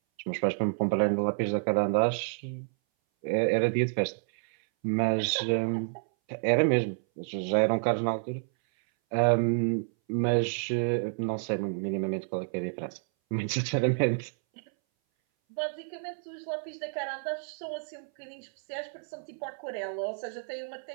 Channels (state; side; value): silent; left; 58 dB below the other